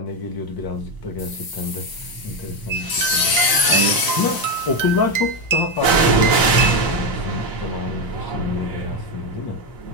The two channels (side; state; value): right; late; 1.0 ms